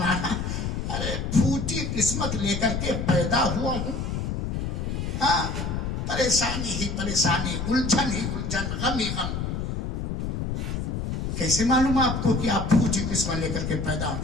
ارے پھوٹی قسمت لے کر کے پیدا ہوا ہوں، ہاں پریشانی ہی پریشانی، الجھن ہی الجھن، غم ہی غم۔ کیسے معلوم آپ کو کہ آپ پھوٹی قسمت لے کر کے پیدا ہوں؟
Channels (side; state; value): left; noise; rumble, 2 dB below the sound